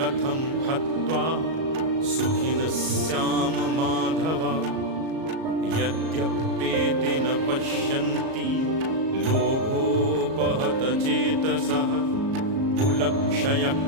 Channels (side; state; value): left; late; 37 ms